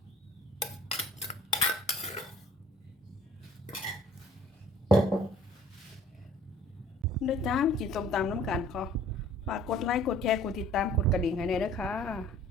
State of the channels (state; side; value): normal; both; correlation 0.53